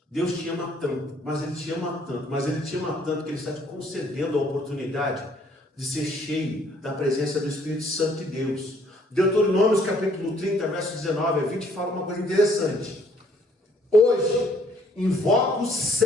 Deus te ama tanto, mas Ele te ama tanto, mas Ele te ama tanto que Ele está te concedendo a oportunidade de ser cheio da presença do Espírito Santo de Deus. Deuteronômio capítulo 30, verso 19 a 20 fala uma coisa interessante. Hoje invoco os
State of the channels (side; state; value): both; normal; correlation 0.63